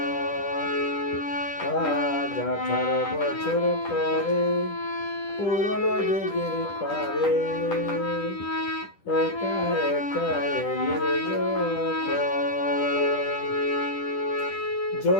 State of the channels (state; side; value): late; right; 10 ms